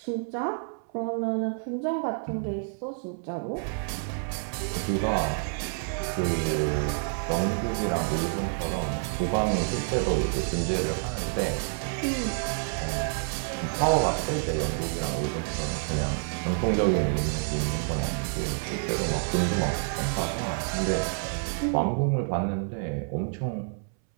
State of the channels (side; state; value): left; silent; 59 dB below the other